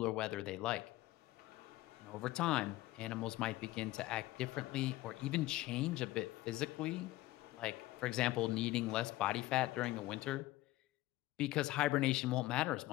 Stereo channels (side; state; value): right; quieter; 17.4 dB